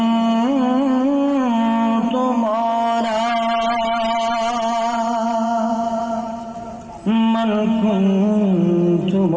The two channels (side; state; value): both; identical; correlation 1.00